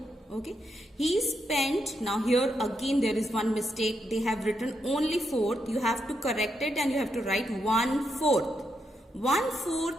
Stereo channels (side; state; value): both; normal; correlation 0.81